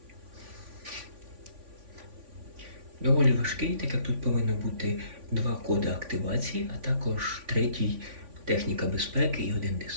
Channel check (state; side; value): late; left; 3.5 ms